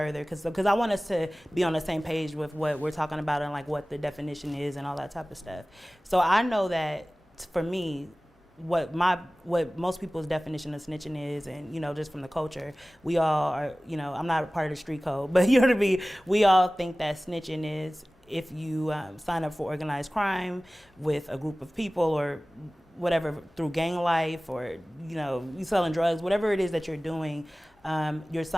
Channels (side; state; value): both; normal; correlation 0.98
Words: because I want us to be on the same page with what we're talking about and like what the definition is and all that type of stuff. So I know that for me, what most people's definition of snitching is, and just from the culture, we all are, I'm not a part of the street code, but you know what I mean, we all think that snitching is if you sign up for organized crime with a group of people or whatever, through gang life, or you selling drugs, whatever it is that you're doing, you're